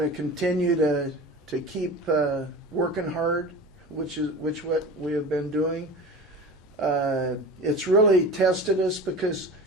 to continue to keep working hard, which what we have been doing. It's really tested us because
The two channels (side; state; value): both; normal; correlation 0.33